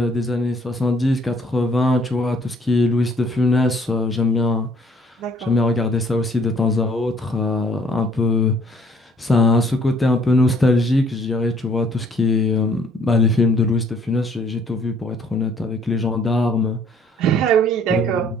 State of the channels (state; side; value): normal; both; correlation 0.61